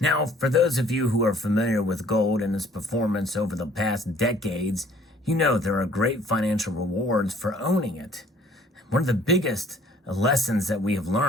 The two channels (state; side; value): normal; both; correlation 0.57